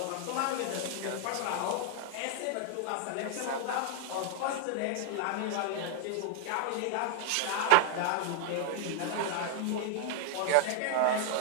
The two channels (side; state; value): both; different; correlation 0.00